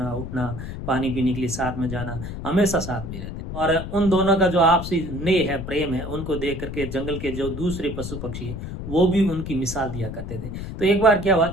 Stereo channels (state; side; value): noise; left; rumble, 7 dB below the sound